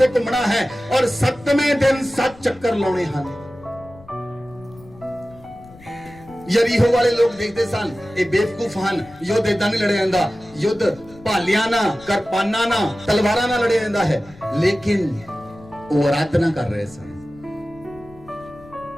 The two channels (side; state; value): left; noise; rumble, 22 dB below the sound